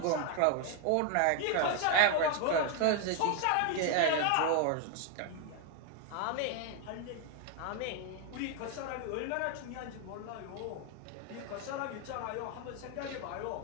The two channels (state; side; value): different; both; correlation 0.01